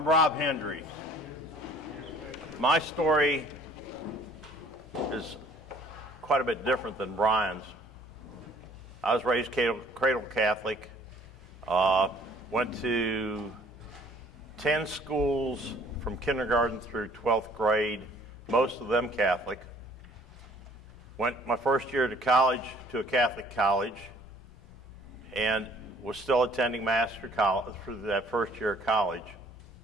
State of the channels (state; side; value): normal; both; correlation 0.56